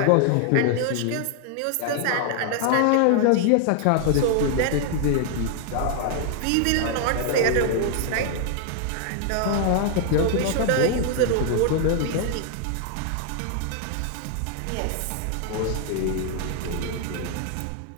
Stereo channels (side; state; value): both; different; correlation 0.00